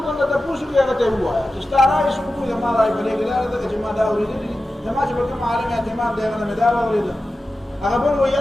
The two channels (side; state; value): both; normal; correlation 0.93